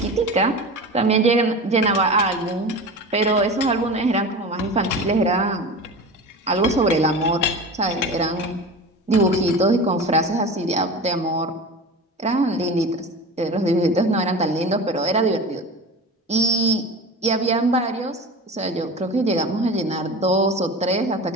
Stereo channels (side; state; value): both; normal; correlation 0.32